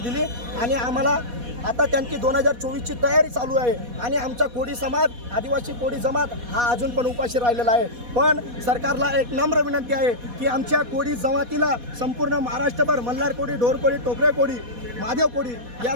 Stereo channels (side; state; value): left; late; 4.2 ms